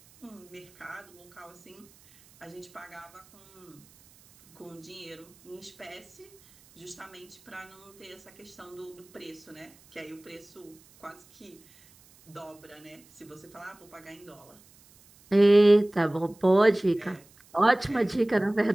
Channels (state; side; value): noise; right; hiss, 27 dB below the sound